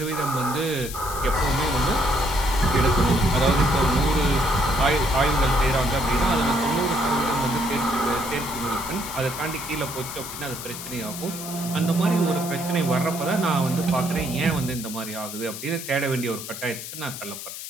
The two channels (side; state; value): left; noise; hiss, 9 dB below the sound